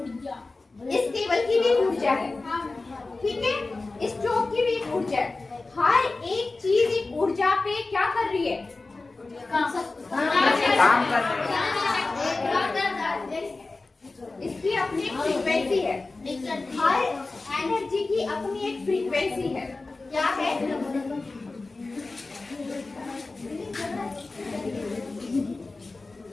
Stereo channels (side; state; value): right; quieter; 3.5 dB